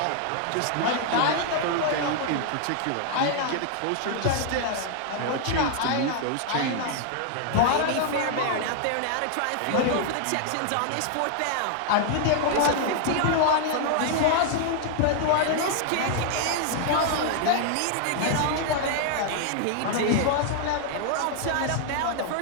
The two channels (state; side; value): different; both; correlation 0.00